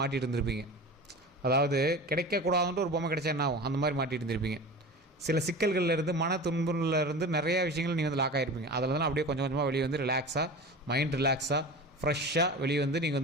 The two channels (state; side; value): normal; both; correlation 0.33